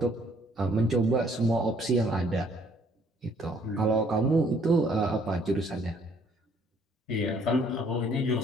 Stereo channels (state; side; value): normal; both; correlation 0.63